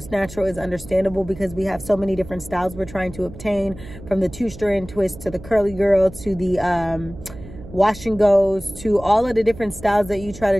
natural is understandable, because we have so many different styles we're trying to obtain, from the 2-strand twist to the curly girl to the wash and goes, to all of the different styles that you try to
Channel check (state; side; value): noise; right; hum, 16 dB below the sound